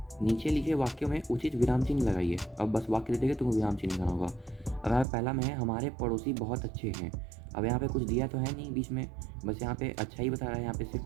नीचे लिखे वाक्यों में उचित विराम चिन्ह लगाइए। अब बस वाक्य दे देगा, तुमको विराम चिन्ह लगाना होगा। अब यहाँ पहला में है हमारे पड़ोसी बहुत अच्छे हैं। अब यहाँ पे कुछ दिया तो है नहीं बीच में, बस यहाँ पे अच्छा ही बता रहा है, यहाँ पे सिर्फ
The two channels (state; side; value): drops out; left; at 5.1 s